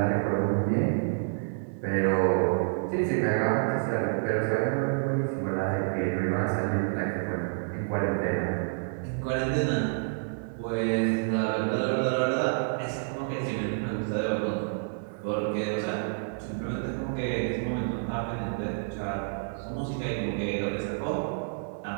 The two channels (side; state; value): left; silent; digital silence